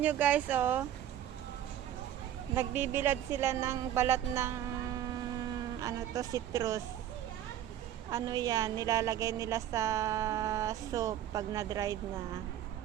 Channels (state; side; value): quieter; left; 11.4 dB